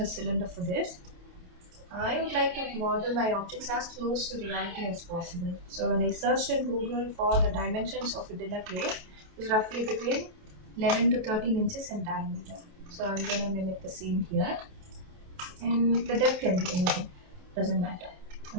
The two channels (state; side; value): late; left; 28 ms